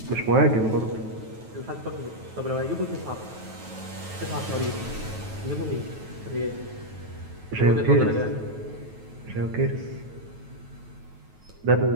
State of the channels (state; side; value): late; left; 9.2 ms